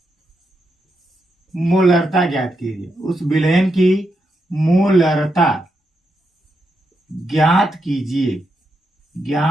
मोलरता ज्ञात कीजिए। उस विलयन की मोलरता ज्ञात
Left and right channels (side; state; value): both; normal; correlation 0.83